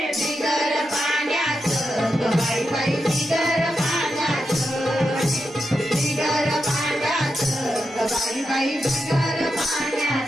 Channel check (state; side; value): normal; both; correlation 0.87